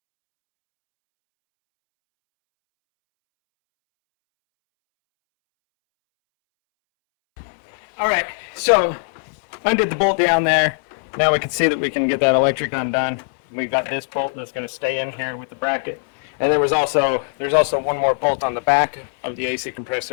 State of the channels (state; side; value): silent; right; 66 dB below the other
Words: All right, so undid the bolt down there. Now we can see that we can get that electric undone. We've got this bolt that's going to stay in here with the bracket. And there's also one more bolt on the back of the AC